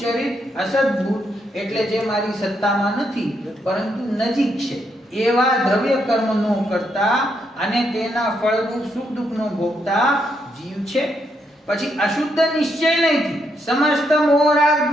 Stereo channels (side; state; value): both; normal; correlation 0.78